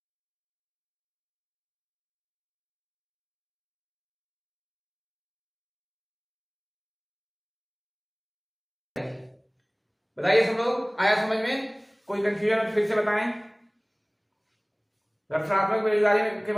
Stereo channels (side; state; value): both; identical; correlation 1.00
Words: बताइए सब लोग, आया समझ में? कोई कंफ्यूजन फिर से बताएं, घर्षणात्मक बेरोजगारी के